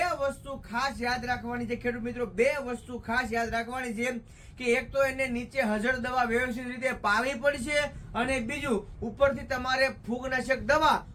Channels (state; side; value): identical; both; correlation 1.00